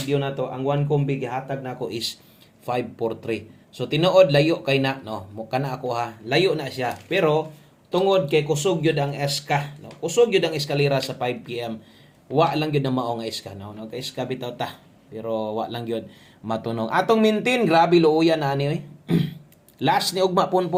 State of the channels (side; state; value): both; identical; correlation 1.00